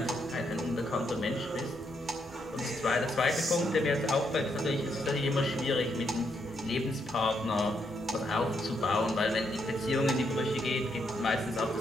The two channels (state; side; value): normal; both; correlation 0.77